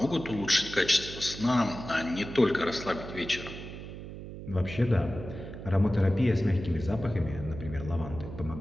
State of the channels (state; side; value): noise; right; hum, 11 dB below the sound